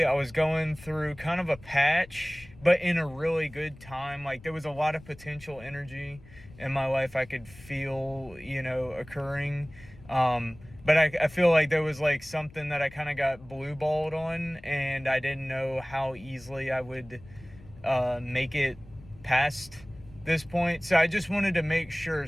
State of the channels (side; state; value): left; noise; rumble, 21 dB below the sound